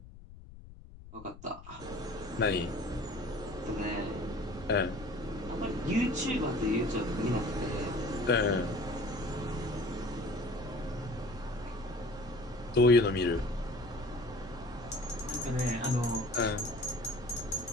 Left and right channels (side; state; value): left; noise; rumble, 17 dB below the sound